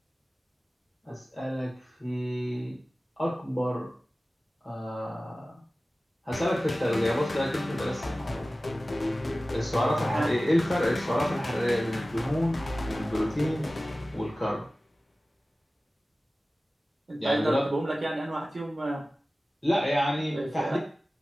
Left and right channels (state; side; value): normal; both; correlation 0.96